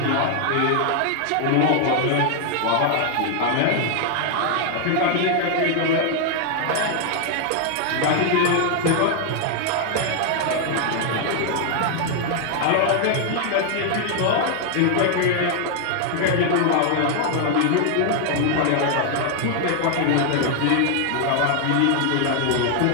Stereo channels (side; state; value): both; different; correlation 0.00